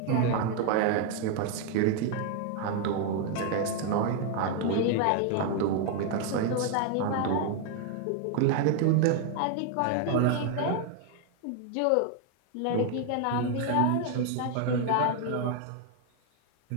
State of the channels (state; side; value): different; both; correlation 0.00